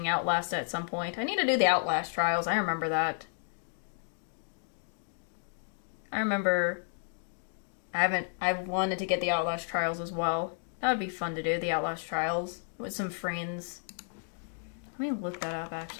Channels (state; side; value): silent; right; digital silence